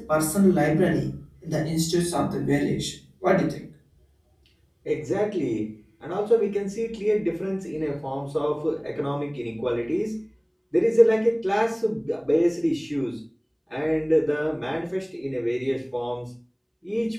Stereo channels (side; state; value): both; identical; correlation 1.00